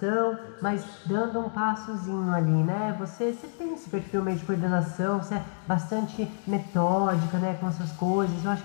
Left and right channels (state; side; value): silent; right; digital silence